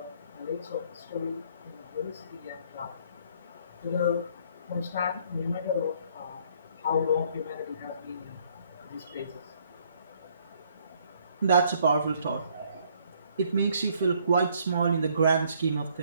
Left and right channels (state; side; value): inverted; both; correlation -0.65